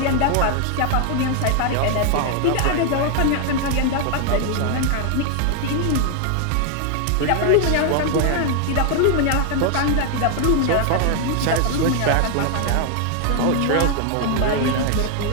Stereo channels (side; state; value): both; different; correlation 0.00